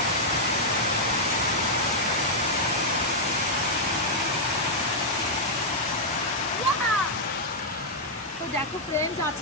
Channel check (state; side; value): normal; both; correlation -0.03